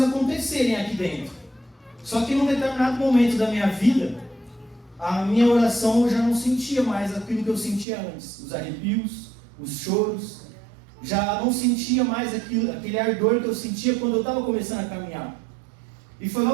aqui dentro. Só que num determinado momento da minha vida, a minha oração eu já não sentia mais aquilo que eu sentia antes. Os arrepios, os choros. Já não sentia mais aquele ardor que eu sentia quando eu estava começando a caminhar. E foi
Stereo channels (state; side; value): drops out; left; at 7.9 s